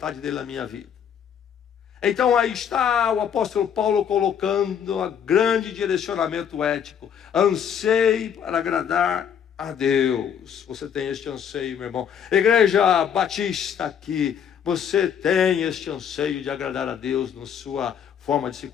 dele na minha vida. Então aí está o apóstolo Paulo colocando um grande direcionamento ético. Anseie para agradar a Deus. Você tem este anseio, meu irmão. Igreja Batista aqui, você tem este anseio de agradar a Deus na sua forma de se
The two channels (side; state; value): right; quieter; 8.2 dB